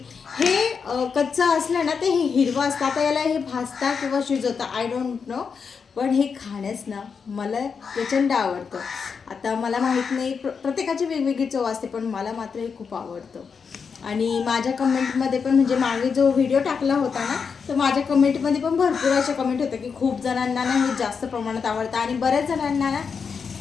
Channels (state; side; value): quieter; right; 5.9 dB